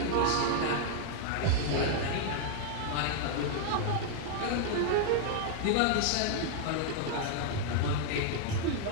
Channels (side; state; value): both; different; correlation 0.00